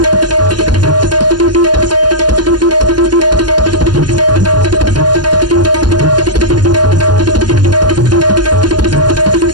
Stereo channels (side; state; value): left; late; 0.70 ms